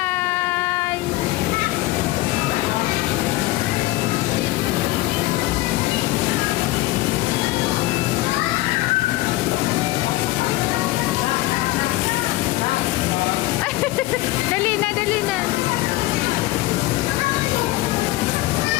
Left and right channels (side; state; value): right; quieter; 18.3 dB